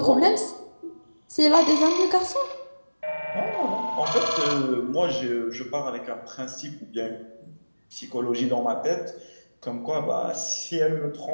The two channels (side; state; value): both; inverted; correlation -1.00